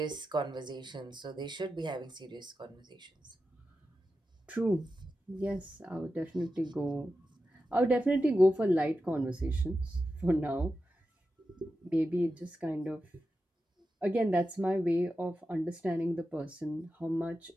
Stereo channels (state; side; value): normal; both; correlation 0.91